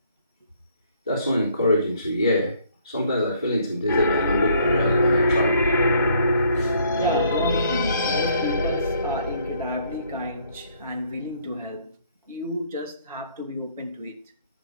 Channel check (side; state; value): both; inverted; correlation -0.64